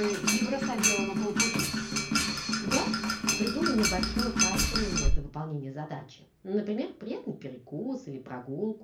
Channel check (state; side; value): identical; both; correlation 1.00